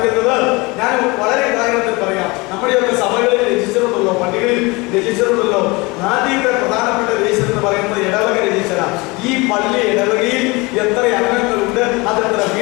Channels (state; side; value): quieter; right; 25.1 dB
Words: ഞാൻ വളരെ കാര്യത്തിൽ പറയാം. നമ്മുടെയൊക്കെ സഭകളിൽ രജിസ്റ്ററുണ്ടല്ലോ, പള്ളികളിൽ രജിസ്റ്ററുണ്ടല്ലോ. ആദ്യത്തെ പ്രധാനപ്പെട്ട രജിസ്റ്റർ എന്ന് പറയുന്നത് ഇടവക രജിസ്റ്ററാണ്. ഈ പള്ളി ഇടവകയിൽ എത്ര അംഗങ്ങളുണ്ട്, അതെത്ര